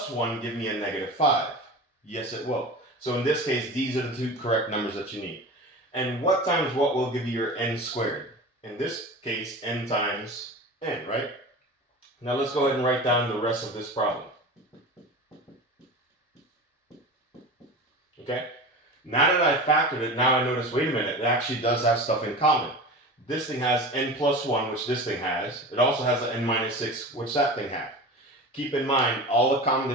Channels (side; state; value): both; normal; correlation 0.32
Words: 1 give me a negative 5? Yes, it will. So in this case, these are the two correct numbers that you need. And what times what will give you your n squared? In this case, n times n, right? Now let's go ahead and write down the rest of this problem. Okay? Now that I factored it, now I notice, wait a minute, it actually does have stuff in common. This thing has n plus 1, which this thing has. It also has an n minus 6, which that thing had. Keep in mind, all the common